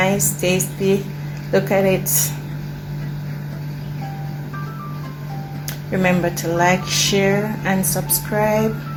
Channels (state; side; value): identical; both; correlation 1.00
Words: tasty. Look at it. Remember to like, share, and subscribe.